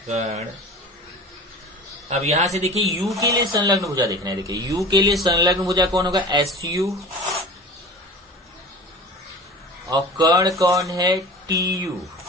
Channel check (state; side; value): normal; both; correlation 0.38